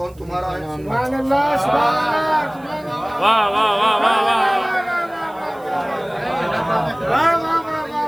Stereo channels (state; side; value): noise; right; hiss, 29 dB below the sound